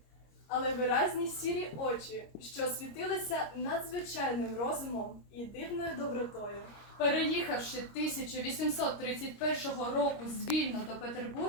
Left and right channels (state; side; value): late; right; 26 ms